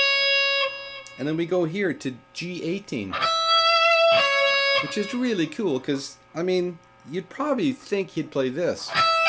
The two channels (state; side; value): identical; both; correlation 1.00